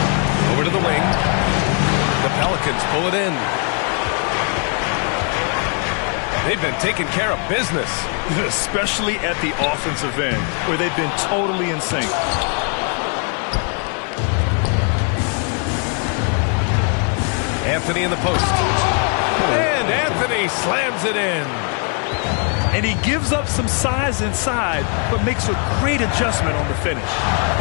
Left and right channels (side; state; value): right; quieter; 39.9 dB